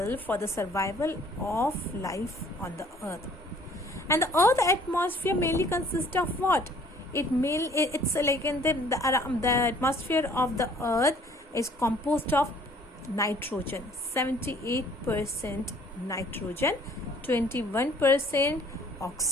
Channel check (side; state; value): both; normal; correlation 0.56